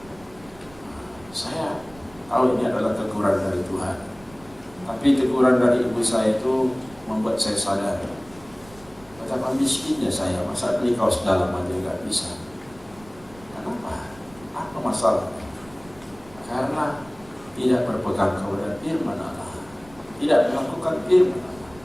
Saya tahu ini adalah teguran dari Tuhan. Tapi teguran dari ibu saya itu membuat saya sadar betapa miskinnya saya, masa beli kaos dalam aja nggak bisa. Kenapa? Apa masalahnya? Karena tidak berpegang kepada firman Allah, tidak melakukan firman Allah.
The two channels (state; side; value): noise; right; rumble, 23 dB below the sound